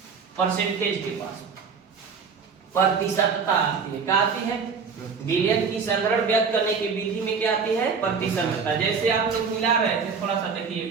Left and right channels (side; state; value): left; quieter; 5.6 dB